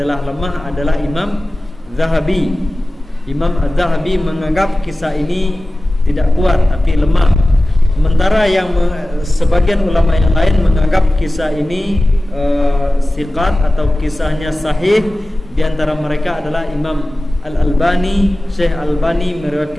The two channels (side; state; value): both; normal; correlation 0.96